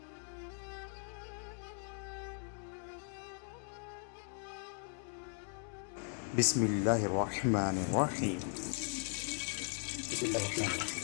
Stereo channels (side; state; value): right; silent; 52 dB below the other